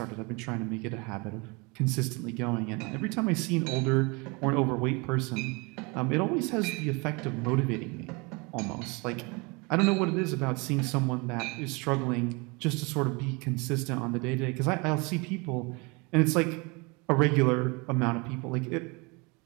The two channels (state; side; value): quieter; left; 28.4 dB